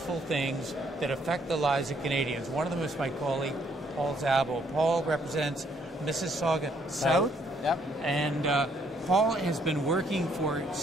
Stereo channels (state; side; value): normal; both; correlation 0.68